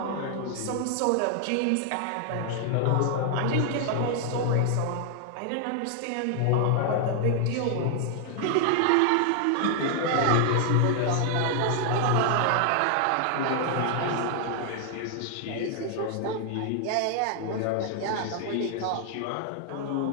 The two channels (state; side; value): different; both; correlation 0.00